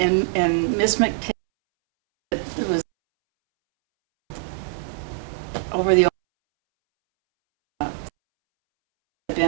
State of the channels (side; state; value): left; silent; 64 dB below the other